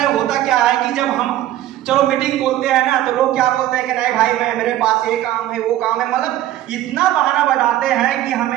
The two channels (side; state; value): left; quieter; 13.6 dB